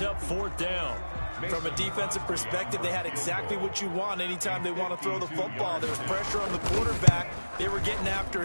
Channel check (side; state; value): both; inverted; correlation -1.00